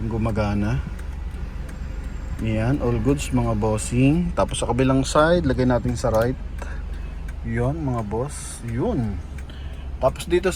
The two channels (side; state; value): both; identical; correlation 1.00